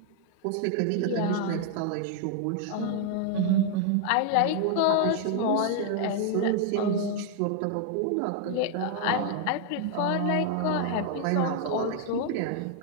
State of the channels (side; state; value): both; different; correlation 0.00